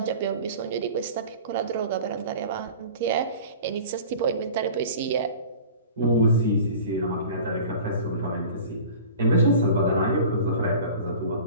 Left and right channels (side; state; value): both; inverted; correlation -0.40